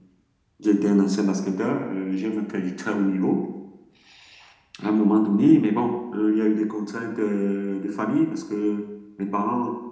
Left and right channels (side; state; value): both; identical; correlation 1.00